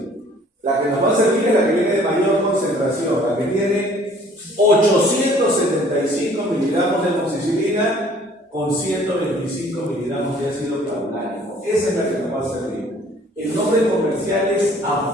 La que nos va a servir es la que viene de mayor concentración, la que tiene 875 miligramos de amoxicilina con 125 miligramos de ácido clavulánico. Esa es la que nos va a servir. El nombre comercial es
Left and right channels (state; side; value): normal; both; correlation 0.55